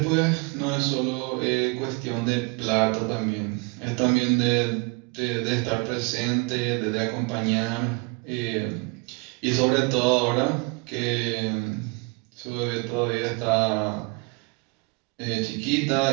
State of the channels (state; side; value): quieter; left; 30.2 dB